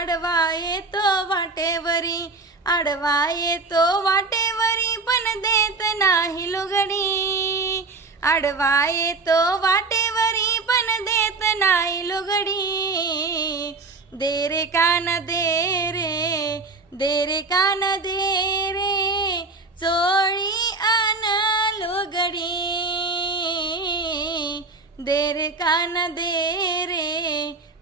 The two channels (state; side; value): quieter; left; 3.8 dB